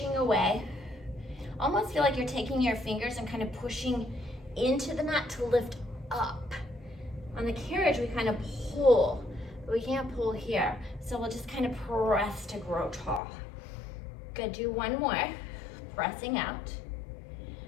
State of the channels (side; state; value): right; drops out; at 13.2 s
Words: away. Almost feel like you're taking your fingers and kind of pushing into the mat to lift up. On the carriage, we kind of pull, but we can't pull here. So we'll just kind of press to grow tall. Good, do one more, pressing out